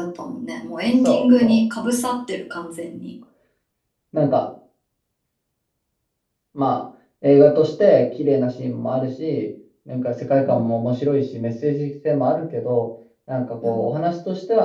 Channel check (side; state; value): both; identical; correlation 1.00